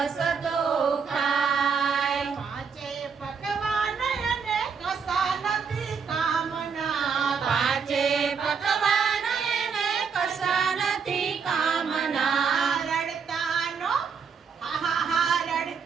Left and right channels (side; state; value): left; quieter; 6.1 dB